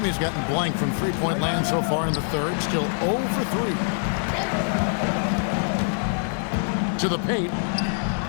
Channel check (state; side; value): silent; right; digital silence